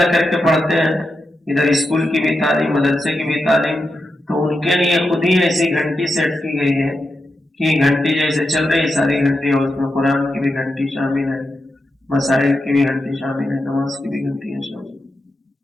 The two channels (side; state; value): both; normal; correlation 0.87